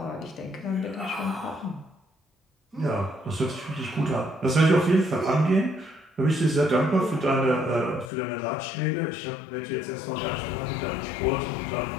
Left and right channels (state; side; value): drops out; right; at 8.1 s